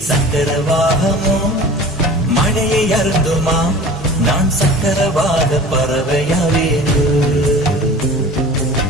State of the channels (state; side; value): normal; both; correlation 0.40